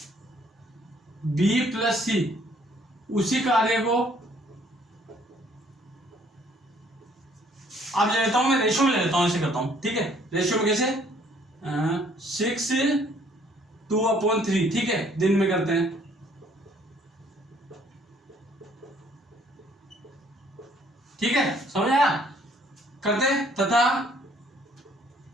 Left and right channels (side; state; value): both; normal; correlation 0.62